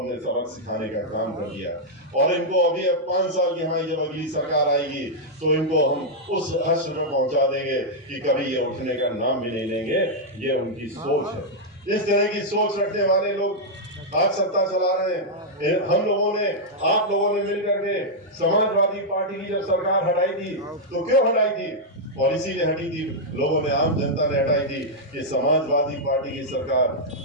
सबक सिखाने का काम कर दिया। और इनको अभी अब 5 साल की हमारी जब अगली सरकार आएगी, तो इनको हम उस हश्र में पहुंचा देंगे कि कभी ये उठने का नाम भी नहीं लेंगे। ये उनकी सोच है। इस तरह की सोच रखने वाले लोग आज सत्ता चला रहे हैं। हम लोगों ने, आप लोगों ने मिलकर के समाजवादी पार्टी की जब सरकार हटाई थी, तो क्यों हटाई थी? पॉलिसी ने हटी थी, लोगों ने, आम जनता ने हटाई थी कि समाजवादी पार्टी की सरकार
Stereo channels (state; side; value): normal; both; correlation -0.05